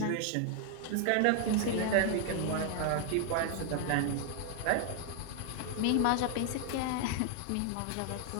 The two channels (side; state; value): both; different; correlation 0.00